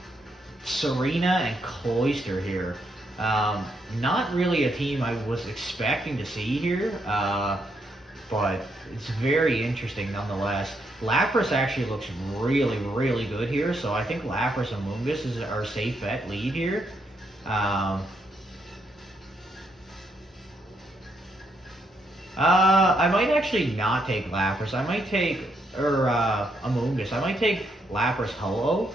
Serena, and Cloyster here. Not really a team I was expecting to see here, but it's very interesting nonetheless. Lapras actually looks really good here, so I think Lapras and Amoonguss is our safe bet lead here. I might actually not take Lapras. I might take, Amoonguss. I might take Lapras Ho-Oh.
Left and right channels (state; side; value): normal; both; correlation 0.77